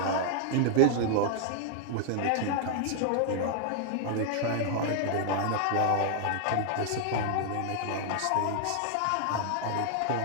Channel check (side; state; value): both; different; correlation -0.01